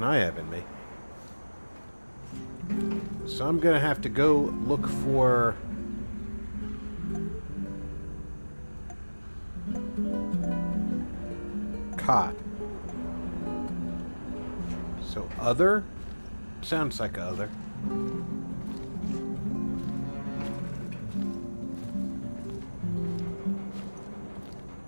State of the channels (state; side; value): inverted; both; correlation -1.00